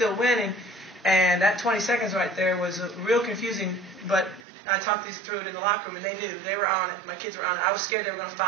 winning, and that 20 seconds right there was real confusing. But I talked this through it in the locker room, and they knew they were on it. My kids were on it. I was scared they were going to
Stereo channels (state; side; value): drops out; left; at 4.4 s